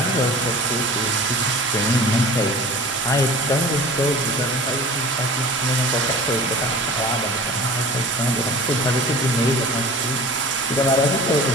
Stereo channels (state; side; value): normal; both; correlation 0.39